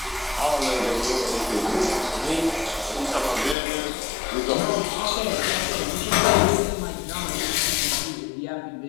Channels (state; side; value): drops out; right; at 3.6 s